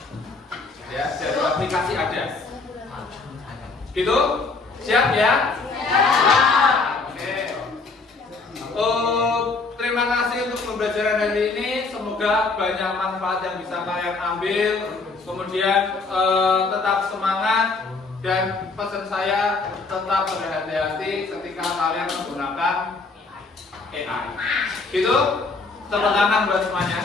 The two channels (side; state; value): right; quieter; 4.0 dB